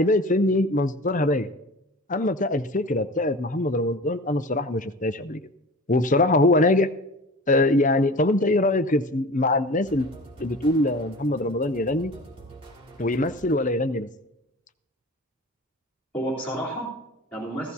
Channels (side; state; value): both; normal; correlation 0.37